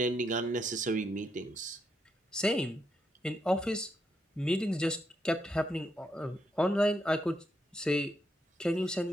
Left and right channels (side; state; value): both; normal; correlation 0.79